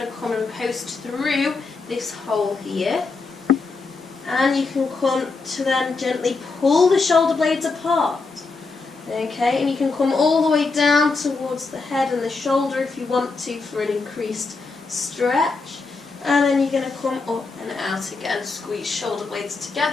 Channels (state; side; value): quieter; right; 4.1 dB